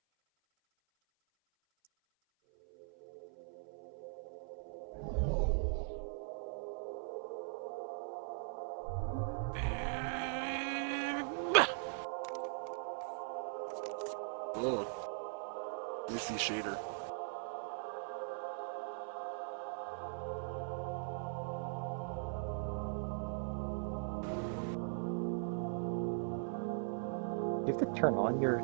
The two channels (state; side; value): silent; left; 51 dB below the other